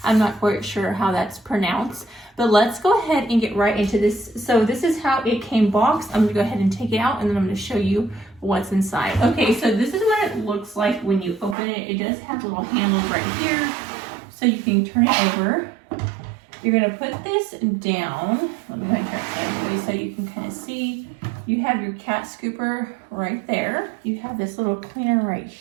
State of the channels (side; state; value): left; drops out; at 11.6 s